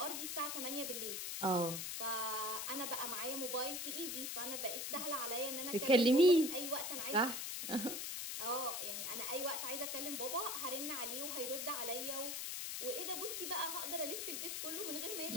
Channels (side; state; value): left; noise; hiss, 3 dB below the sound